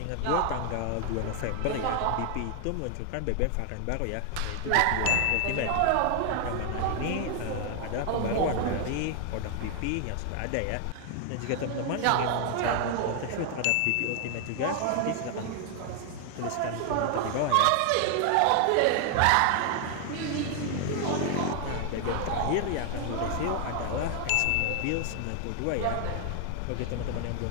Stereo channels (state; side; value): different; both; correlation 0.00